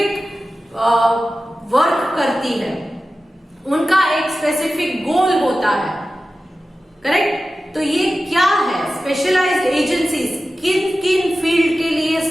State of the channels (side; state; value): both; normal; correlation 0.94